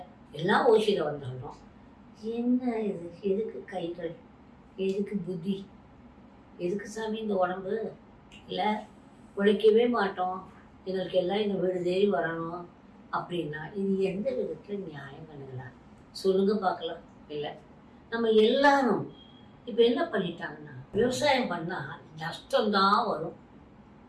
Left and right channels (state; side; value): identical; both; correlation 1.00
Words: எல்லாம் ஓசியில் வந்துடணும். என்ன இது? எதுக்கு கைகள், எதுக்கு புத்தி, எதுக்கு சாமி இந்த உடம்பு? இல்லை உழைக்கவே மாட்டோம், எங்களுக்கு எல்லாம் இந்த வீடு தேடி வரணும் அப்படின்னா இது எந்த விதத்தில் நியாயம் பண்ணுங்களா? சொல்லுங்க பார்க்கலாம். இல்லை நம்ம எல்லாரும் இப்போ என்ன பண்ணிட்டாங்கன்னா, விவசாயம் பண்ணால் நஷ்டம்தான் வரும்.